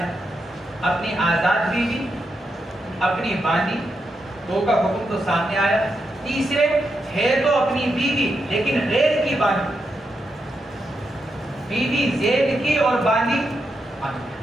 اپنی آزاد بیوی، اپنی باندی، 2 کا حکم تو سامنے آیا۔ تیسرے ہے تو اپنی بیوی لیکن غیر کی باندی، بیوی زید کی اور باندی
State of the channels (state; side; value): normal; both; correlation 0.84